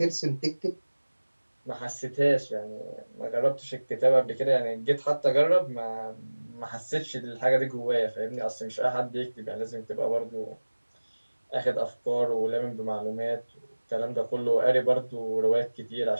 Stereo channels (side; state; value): both; inverted; correlation -1.00